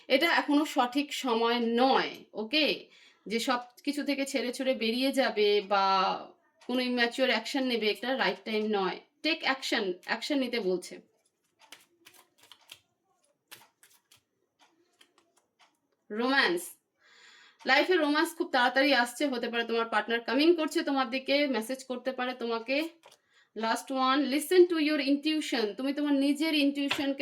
এটা এখনো সঠিক সময় নয়, ওকে। যে সব কিছু থেকে ছেড়ে ছুড়ে বেরিয়ে যাবে বা কোনো ইম্যাচিওর অ্যাকশন নেবে, এটা রাইট টাইম নয়। টেক অ্যাকশন নিতে বলছে। রোম্যান্স, লাইফে রোম্যান্স খুব তাড়াতাড়ি আসছে, হতে পারে তোমার পার্টনার কামিং করছে তোমার দিকে, মেসেজ করতে পারে তোমাকে। Last one, listen to your intuition. তুমি তোমার নিজের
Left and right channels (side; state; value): both; identical; correlation 1.00